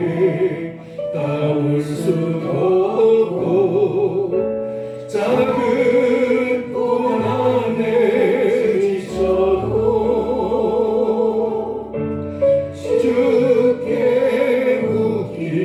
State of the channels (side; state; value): both; identical; correlation 1.00